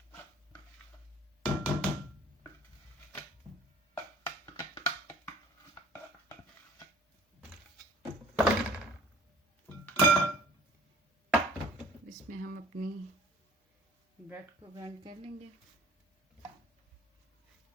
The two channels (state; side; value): normal; both; correlation 0.49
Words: इसमें हम अपनी ब्रेड को ग्राइंड कर लेंगे।